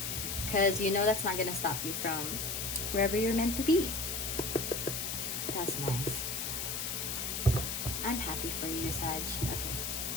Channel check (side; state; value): left; noise; hiss, 2 dB below the sound